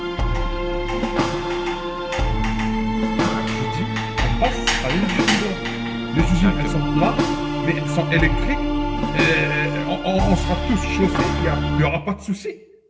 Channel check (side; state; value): both; identical; correlation 1.00